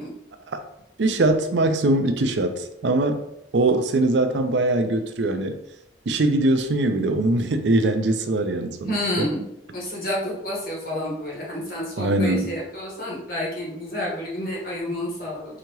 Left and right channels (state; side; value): normal; both; correlation 0.38